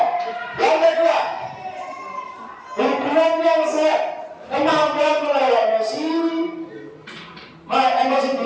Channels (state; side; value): identical; both; correlation 1.00